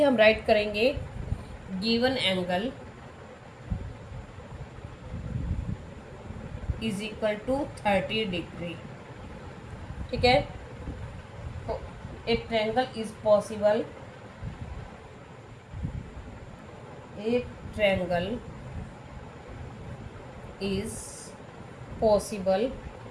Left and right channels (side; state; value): both; identical; correlation 1.00